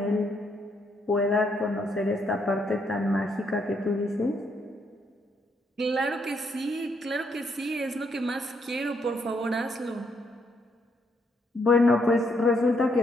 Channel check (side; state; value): both; normal; correlation 0.74